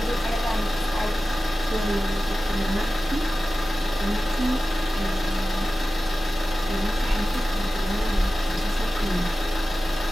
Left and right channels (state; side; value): normal; both; correlation 0.95